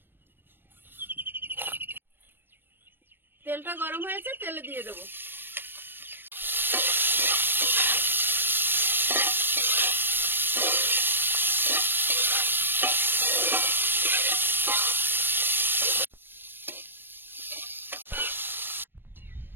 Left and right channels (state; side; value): late; left; 0.097 ms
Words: তেলটা গরম হয়েছে, তেলে দিয়ে দেবো।